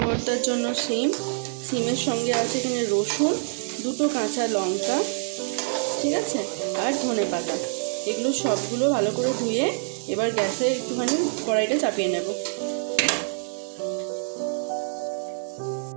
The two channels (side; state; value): left; silent; 57 dB below the other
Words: ভর্তার জন্য সিমের সঙ্গে আছে এখানে রসুন, 2টো কাঁচা লঙ্কা, ঠিক আছে, আর ধনেপাতা। এগুলো সবগুলো ভালো করে ধুয়ে এবার গ্যাসে একটুখানি কড়াইটা চাপিয়ে নেব।